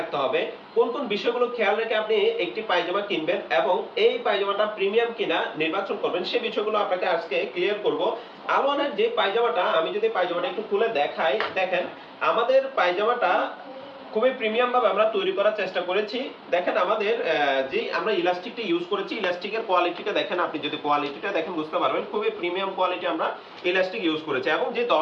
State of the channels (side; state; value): both; identical; correlation 1.00